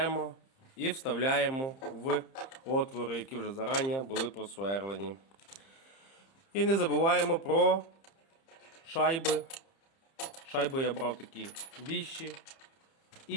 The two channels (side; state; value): right; late; 30 ms